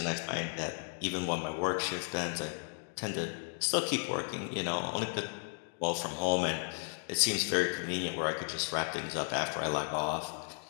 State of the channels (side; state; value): right; silent; 55 dB below the other